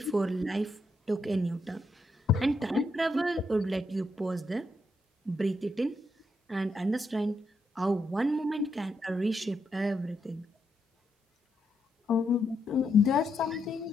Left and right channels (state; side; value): normal; both; correlation 0.80